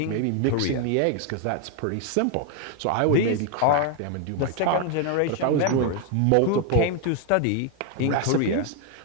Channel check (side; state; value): both; different; correlation 0.01